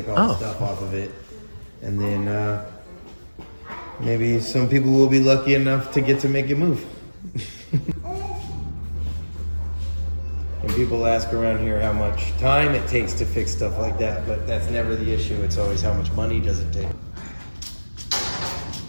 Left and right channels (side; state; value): both; inverted; correlation -1.00